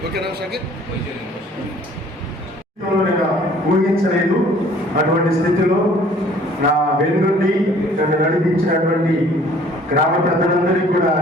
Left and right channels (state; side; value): normal; both; correlation 0.55